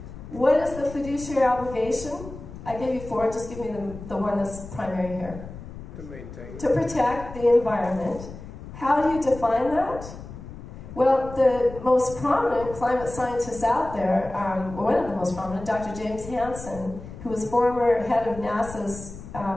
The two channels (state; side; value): noise; left; rumble, 13 dB below the sound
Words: What is the fiduciary obligation? I gave you 4, just give me the one that's primary here. To protect the environment. How do you define that? Well, the most prominent climate scientists out there, one of the most prominent, Dr. James Hansen, who was former head of NASA's